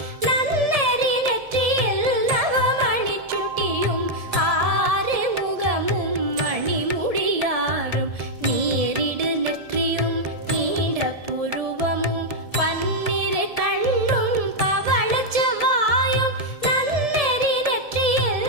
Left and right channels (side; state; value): left; late; 1.7 ms